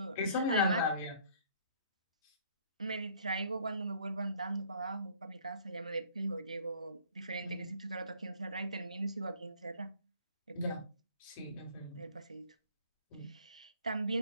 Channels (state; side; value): inverted; both; correlation -0.55